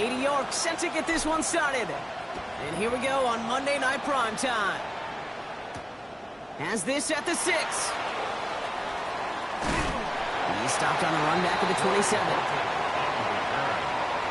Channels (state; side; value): identical; both; correlation 1.00